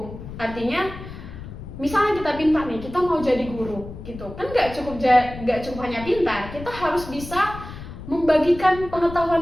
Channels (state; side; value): noise; left; rumble, 12 dB below the sound